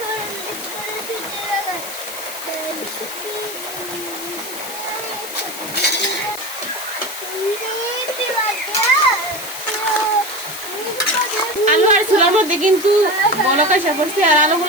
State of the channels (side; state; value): left; noise; hiss, 10 dB below the sound